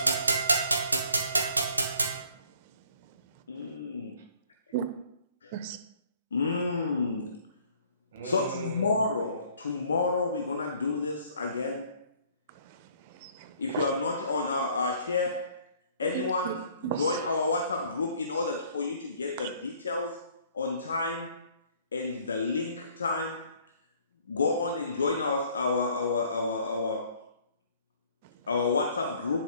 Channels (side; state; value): both; inverted; correlation -0.59